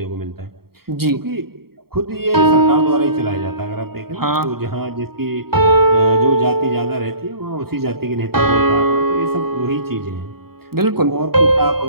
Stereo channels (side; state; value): left; late; 0.95 ms